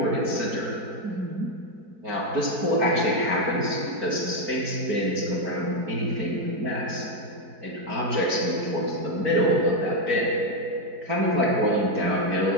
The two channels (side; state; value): left; late; 4.7 ms